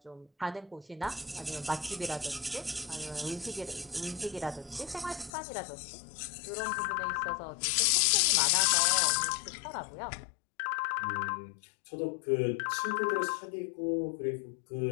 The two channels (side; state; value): right; drops out; at 5.3 s